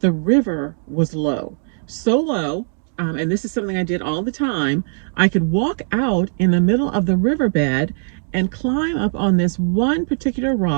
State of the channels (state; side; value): silent; left; digital silence